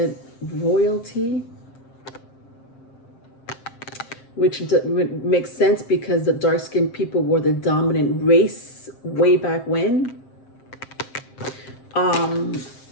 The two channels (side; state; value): right; late; 7.5 ms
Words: royalty, which makes sense because the dark-skinned people were the dominant race way back when.